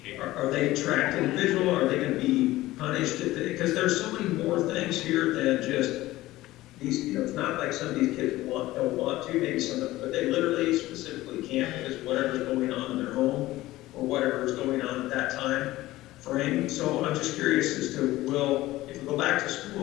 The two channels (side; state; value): right; quieter; 17.1 dB